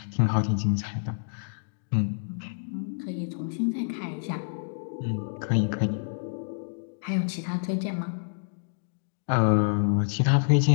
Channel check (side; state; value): right; silent; digital silence